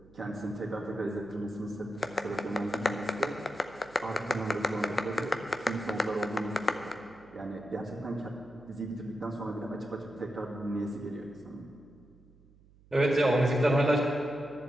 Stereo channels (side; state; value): right; noise; hum, 27 dB below the sound